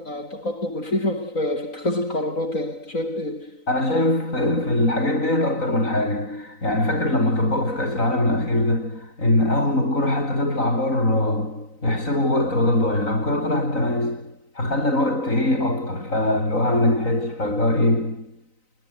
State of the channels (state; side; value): late; right; 3.9 ms